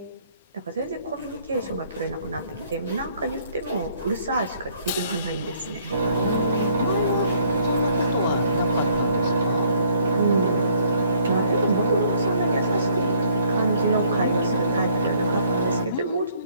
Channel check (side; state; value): both; inverted; correlation -0.63